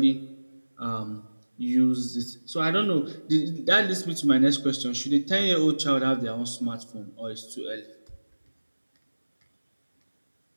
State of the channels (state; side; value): inverted; both; correlation -1.00